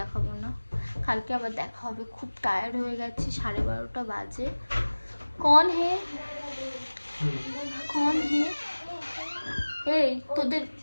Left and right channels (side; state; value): both; inverted; correlation -1.00